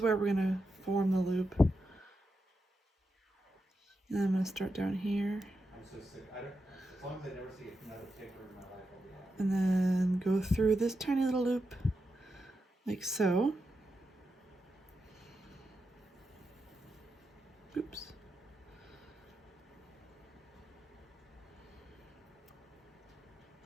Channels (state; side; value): normal; both; correlation 0.87